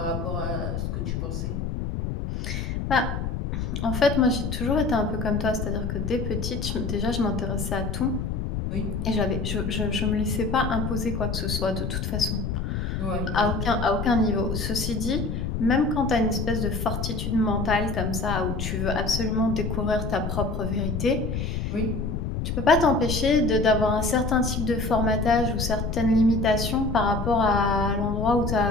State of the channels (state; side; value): noise; left; rumble, 3 dB below the sound